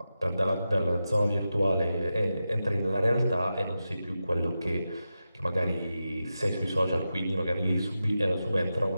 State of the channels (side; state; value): both; inverted; correlation -0.91